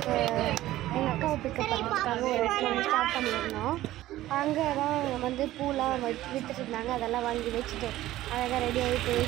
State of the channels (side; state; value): left; quieter; 15.2 dB